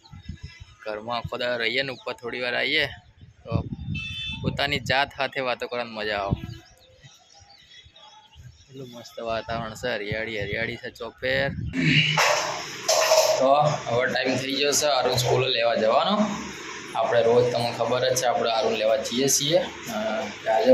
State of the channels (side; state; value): both; identical; correlation 1.00